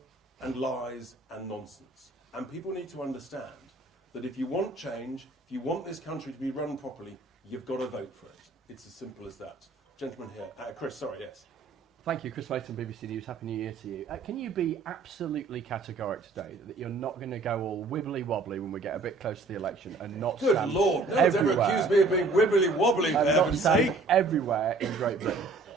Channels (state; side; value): quieter; left; 3.5 dB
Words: and lies and nonsense. And people need to understand that if you want change, if you want this country to be run properly, you've got to vote for it. It's as simple as that. Gentleman here. Chris, sorry, yes. Thank you, Chris Layton, BBC News. Happy New Year to you. Can you be absolutely categoric today that you're not going to go all wibbly-wobbly when we get a bit close to the election and not Good stand Lord, no one's ever accused me of being wibbly-wobbly, for and not heaven's stand sake. everywhere in Great Britain?